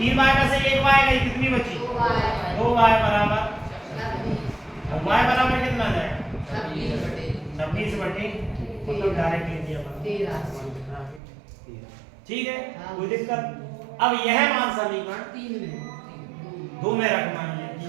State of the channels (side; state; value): left; drops out; at 11.2 s